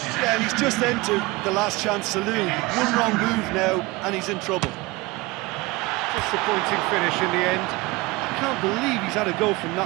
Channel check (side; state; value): left; quieter; 22.4 dB